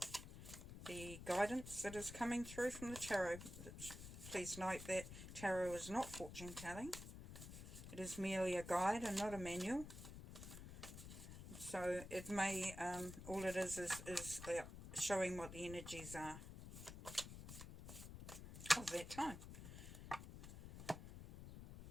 the guidance that is coming through from the tarot. Please note that tarot is not fortune telling. It is merely a guide and not a manual. So it may, all it is showing what the energies are of that time.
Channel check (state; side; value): noise; left; rumble, 11 dB below the sound